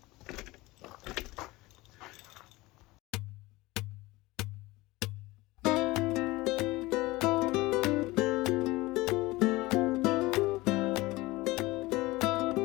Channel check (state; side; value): quieter; right; 20.7 dB